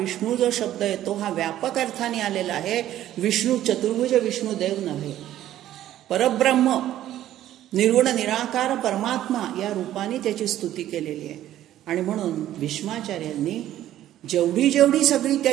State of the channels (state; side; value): quieter; left; 12.8 dB